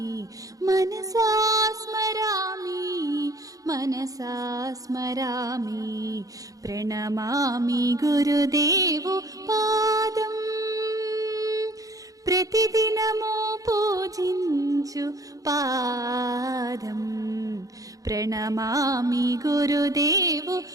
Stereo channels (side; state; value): left; late; 0.17 ms